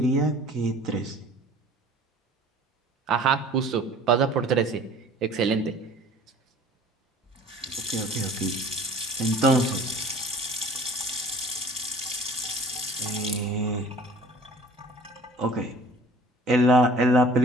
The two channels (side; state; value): both; normal; correlation 0.48